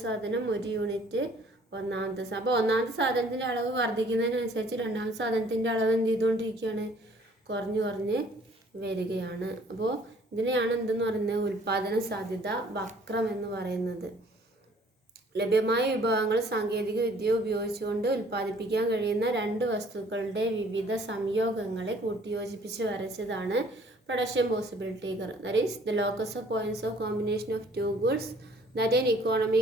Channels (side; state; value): both; normal; correlation 0.57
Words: സാധനം, 1 യൂണിറ്റ് ഒന്നാമത്തെ സാധനം. അപ്പോൾ ഒന്നാമത്തെ സാധനത്തിൻ്റെ അളവ് വർദ്ധിക്കുന്നതിനനുസരിച്ച് രണ്ടാമത്തെ സാധനത്തിൻ്റെ അളവ് എന്ത് ചെയ്തുകൊണ്ടിരിക്കുകയാണ്? കുറഞ്ഞ് വരികയാണ്. അപ്പോൾ ഇതിനെയാണ് എന്തെന്ന് പറയുന്നത്? ഉൽപാദന സാധ്യത വക്രം എന്ന് പറയുന്നത്. ലഭ്യമായ വിഭവങ്ങൾ സാങ്കേതിക വിദ്യ ഉപയോഗിച്ചുകൊണ്ട് ഉൽപ്പാദിപ്പിക്കാൻ കഴിയുന്ന 2 വസ്തുക്കളുടെ വിവിധ സംയോഗങ്ങളെ കൂട്ടിയോജിപ്പിച്ച് വരച്ചതാണ് production possibility curve. That is the locus of points of combination of 2 goods that an economy